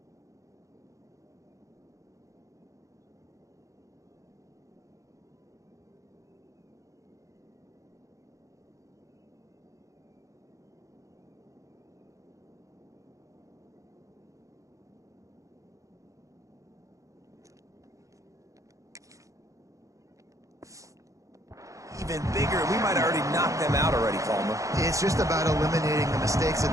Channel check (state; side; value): late; left; 0.15 ms